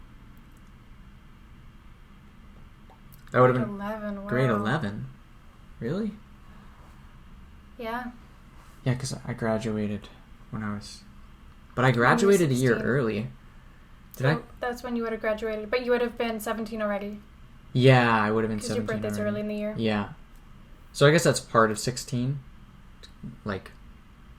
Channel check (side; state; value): both; identical; correlation 1.00